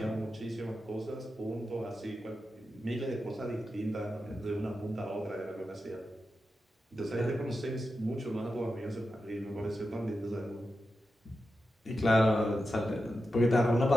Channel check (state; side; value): normal; both; correlation 0.90